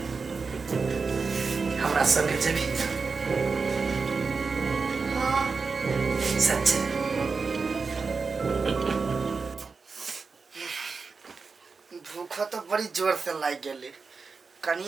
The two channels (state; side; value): quieter; left; 4.7 dB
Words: हमरा संगे जेबी हां सच्चे भूख तो बड़ी जोर से लाग गेले